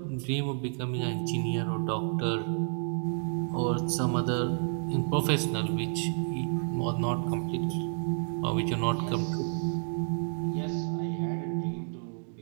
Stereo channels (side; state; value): left; silent; 58 dB below the other